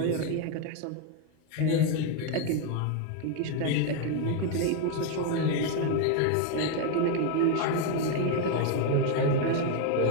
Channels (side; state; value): both; different; correlation 0.01